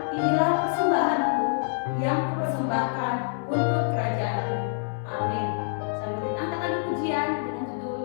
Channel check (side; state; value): right; silent; digital silence